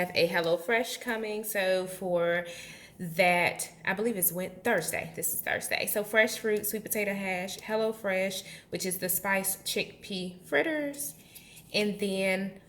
a HelloFresh coming. So for that, I believe it's Thursday. This is Thursday. So fresh fruit, sweet potato hash, HelloFresh, which is the spiced chickpea fritters. And then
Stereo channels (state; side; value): identical; both; correlation 1.00